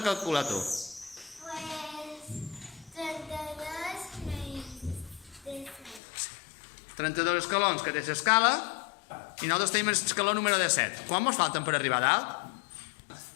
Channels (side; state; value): right; drops out; at 6.0 s